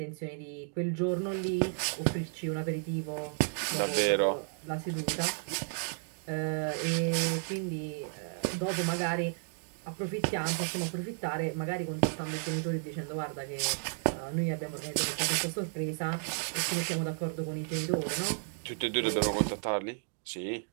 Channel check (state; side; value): silent; left; 56 dB below the other